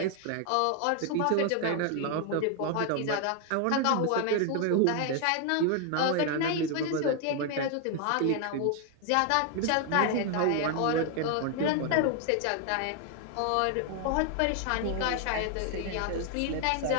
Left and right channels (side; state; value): both; different; correlation 0.01